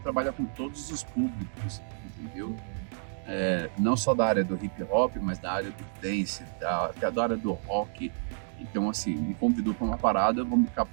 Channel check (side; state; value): left; silent; digital silence